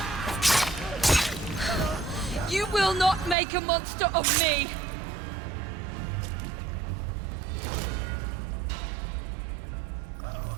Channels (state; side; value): drops out; left; at 3.4 s